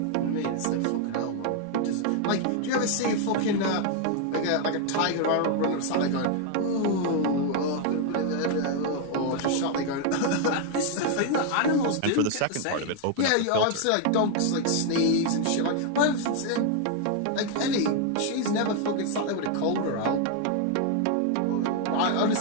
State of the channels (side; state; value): both; different; correlation 0.00